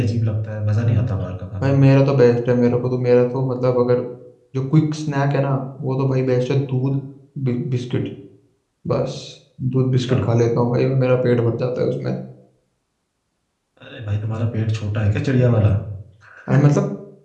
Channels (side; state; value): both; identical; correlation 1.00